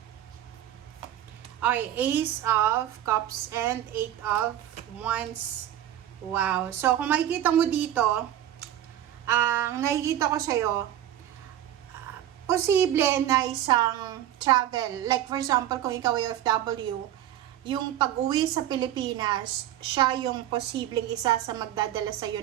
Okay, Ace of Cups and 8 of Wands. Wow. So, kung makikita mo dito, ang nakikita ko sa'yo, posible na isang travel. Like for example, kung ikaw ay OFW, yung pag-uwi sa Pilipinas, siya yung posibleng isa sa magdadala sa iyo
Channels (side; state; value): left; quieter; 11.9 dB